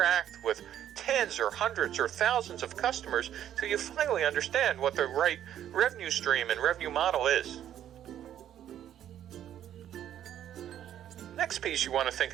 with tens or hundreds or thousands of customers till you finally understand what the right revenue stream and revenue model is. Next piece you want to think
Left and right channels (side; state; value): left; quieter; 10.8 dB